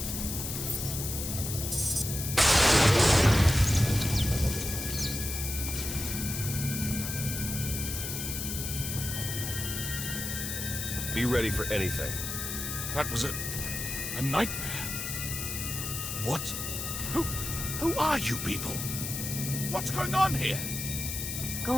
Be ready for anything. That was a nightmare. What? Who are you people? What's going on here? Go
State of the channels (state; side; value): noise; left; hiss, 4 dB below the sound